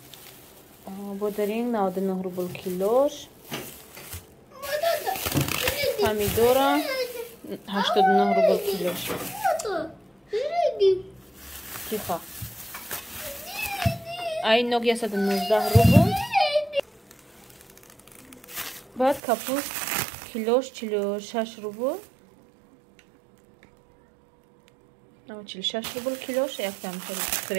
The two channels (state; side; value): drops out; left; at 19.2 s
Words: бодаринг 99 рубл килош. Помидора 89 рубл килош. Тихо. Ай ноги 119 рубл. Баъд капуст килош 46 рубл. 46 рубл килош, яктам